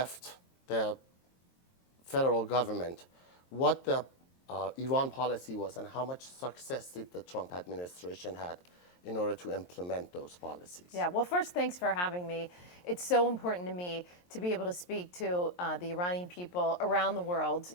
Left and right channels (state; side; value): late; right; 23 ms